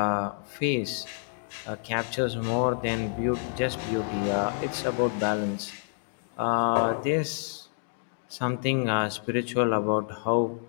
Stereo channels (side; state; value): right; silent; digital silence